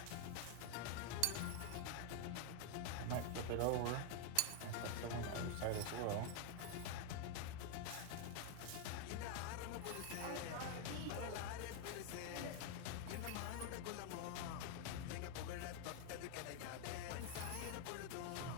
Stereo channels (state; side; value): different; both; correlation 0.01